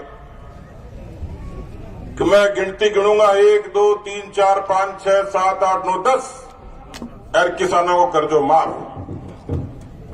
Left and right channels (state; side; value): identical; both; correlation 1.00